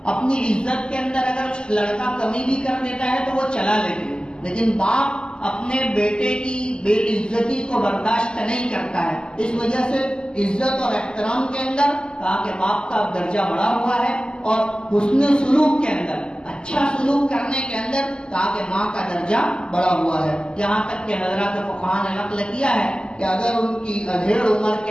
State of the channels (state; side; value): late; right; 0.048 ms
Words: اپنی عزت کے اندر اگر لڑکا کمی بھی کر دیتا ہے تو وہ چلا لیتی ہے، لیکن باپ اپنے بیٹے کی بے عزتی کو برداشت نہیں کرتا ہے۔ اس وجہ سے عزت اور احترام کے اندر کہا کہ باپ کا درجہ بڑا ہوا ہے، اور حسن سلوک کے اندر، اچھا سلوک کرنے کے اندر کہا کہ ماں کا درجہ بڑا ہوا ہے۔ یہاں تک کہ حضرات فقہاء نے نقل کیا ہے کہ اگر ان کی ادھیڑ عمر